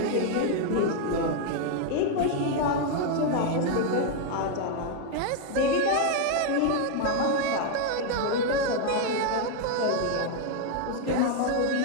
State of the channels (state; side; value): different; both; correlation 0.00